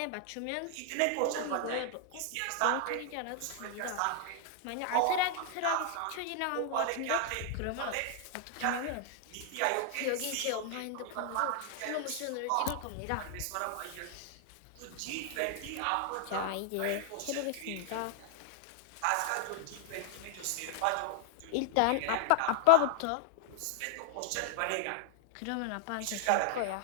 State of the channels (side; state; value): both; different; correlation -0.01